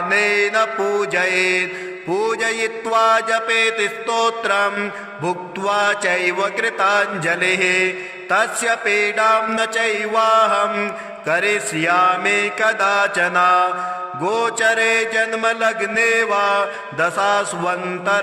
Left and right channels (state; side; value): identical; both; correlation 1.00